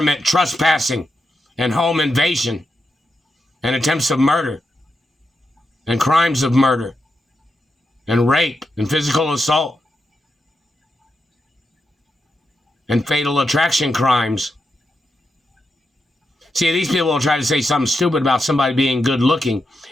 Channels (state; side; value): normal; both; correlation 0.86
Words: trespassing and home invasion and attempts of murder and crimes of murder and rape and physical assault and fatal attraction crimes? See, these people will try to say something stupid about somebody being good looking,